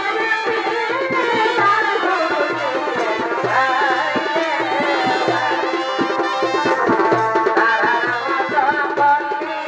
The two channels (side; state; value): both; identical; correlation 1.00